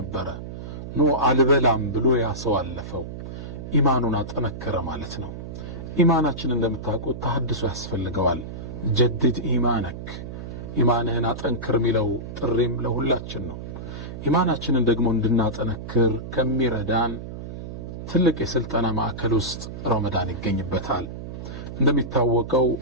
ኖ አልበላም ብሎ ያሰው አለፈው። ኢማኑን አጠነከረ ማለት ነው። ኢማናችን እንደምታውቁት ተሐድሶ ያስፈልገዋል። ጀድድ ኢማነክ፣ ኢማንህን አጠንክር የሚለው ጥሪም ለሁላችን ነው። ኢማናችንን ደግሞ እንድናጠነክር ከሚረዳን ትልቅ የስልጠና ማዕከል ውስጥ ረመዳን ይገኝበታል። እንደሚታወቀው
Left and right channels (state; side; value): noise; right; hum, 9 dB below the sound